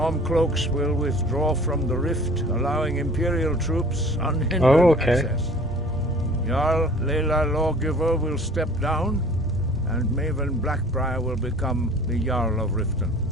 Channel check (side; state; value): both; normal; correlation 0.48